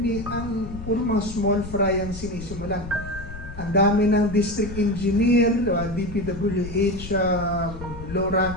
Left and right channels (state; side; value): noise; left; rumble, 12 dB below the sound